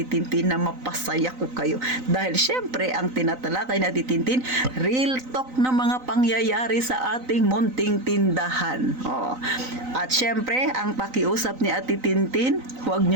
Tintin na mapasaya ko kayo. Dahil syempre, ang tinatalakay ni Ate Tintin, real talk na mga pangyayari sa ating munting tindahan. At syempre, ang pakiusap ni Ate Tintin, huwag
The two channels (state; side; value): late; left; 3.9 ms